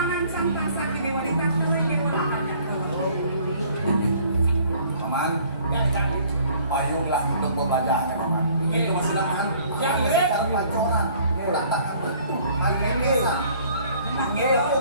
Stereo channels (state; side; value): inverted; both; correlation -0.56